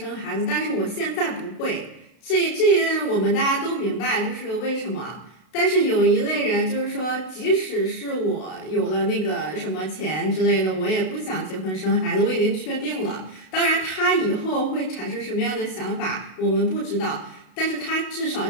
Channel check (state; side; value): late; right; 32 ms